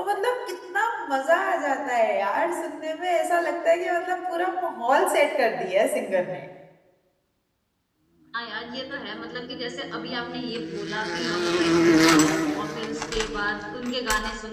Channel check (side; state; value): both; identical; correlation 1.00